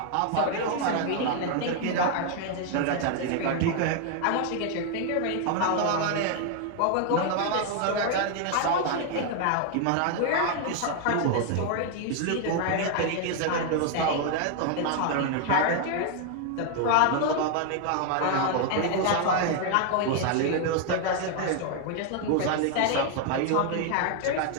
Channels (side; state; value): both; different; correlation 0.00